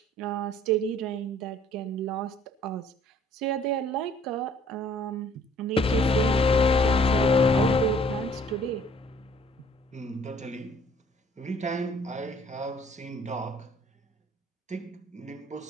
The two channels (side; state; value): both; normal; correlation 0.58